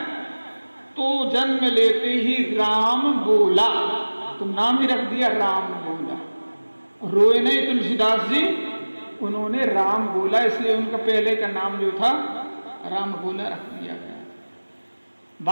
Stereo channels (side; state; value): both; inverted; correlation -1.00